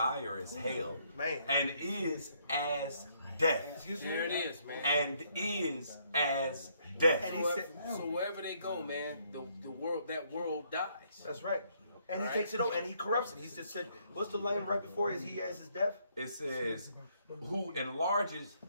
as hell, and is as death." There it is, man. And is as death. And he said, so wherever they go, man, the world dies. That's right. And he takes it over and he corrupts it. He just said, what's the line right before he has his death? It says, who enlarges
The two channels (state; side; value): inverted; both; correlation -0.69